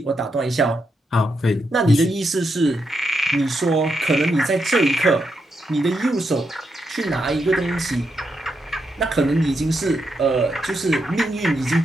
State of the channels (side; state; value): both; normal; correlation 0.83